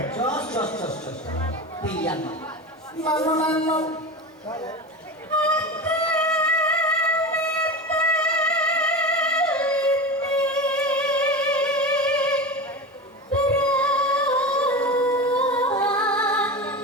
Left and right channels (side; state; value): both; normal; correlation 0.26